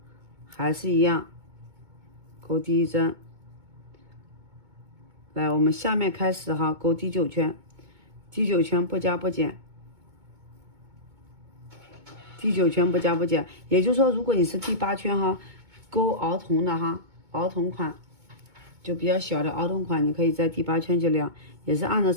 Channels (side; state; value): left; late; 2.2 ms